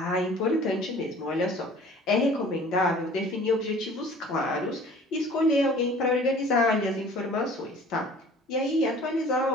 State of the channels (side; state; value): both; normal; correlation 0.48